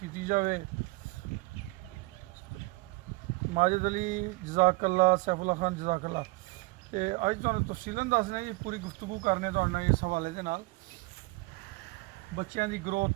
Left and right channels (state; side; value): quieter; left; 24.1 dB